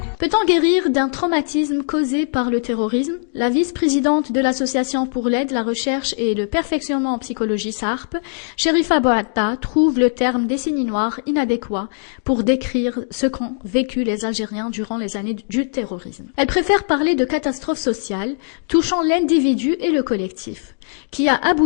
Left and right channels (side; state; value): right; silent; digital silence